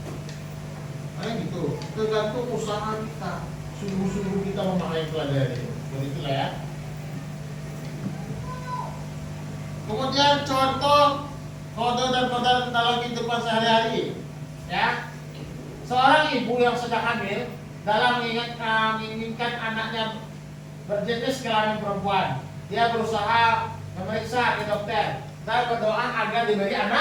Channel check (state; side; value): identical; both; correlation 1.00